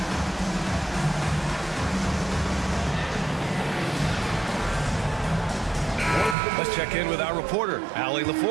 Let's check in with our reporter, Allie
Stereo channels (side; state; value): left; drops out; at 6.4 s